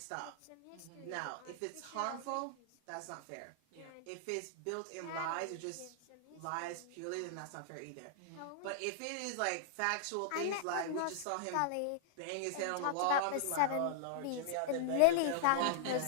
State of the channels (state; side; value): different; both; correlation -0.01